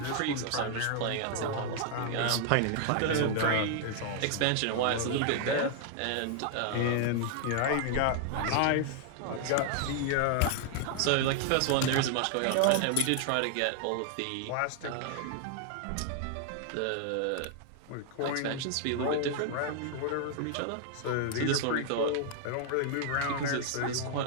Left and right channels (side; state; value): both; different; correlation 0.00